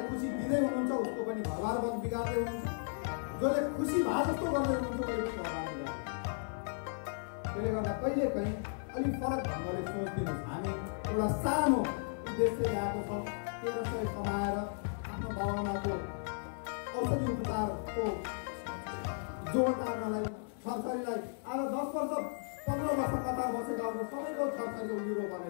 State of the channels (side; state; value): right; silent; digital silence